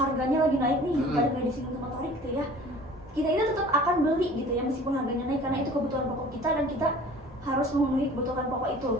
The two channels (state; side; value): normal; both; correlation 0.46